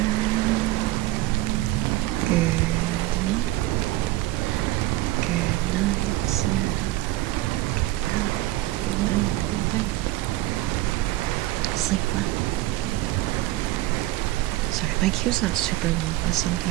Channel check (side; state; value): left; quieter; 16.9 dB